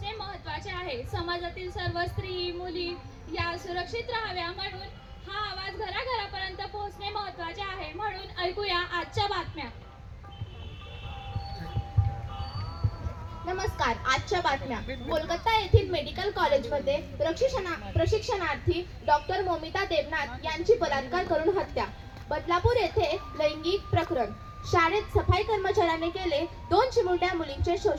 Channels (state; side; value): identical; both; correlation 1.00